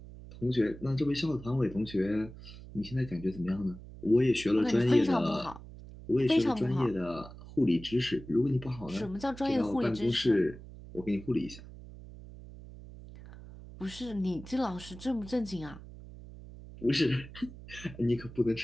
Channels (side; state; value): right; noise; hum, 16 dB below the sound